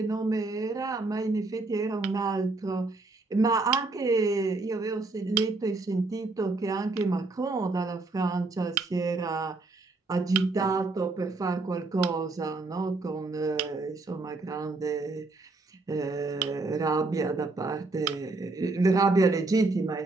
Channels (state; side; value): quieter; left; 3.4 dB